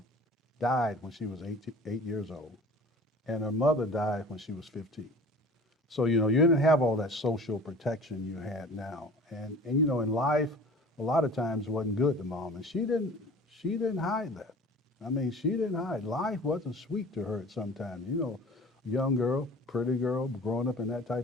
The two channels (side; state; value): both; normal; correlation 0.44